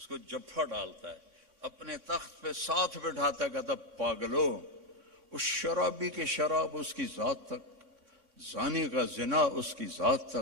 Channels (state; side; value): late; left; 3.6 ms